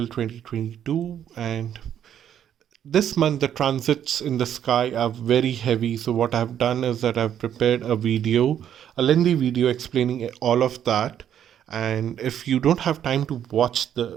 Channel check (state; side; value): quieter; left; 9.8 dB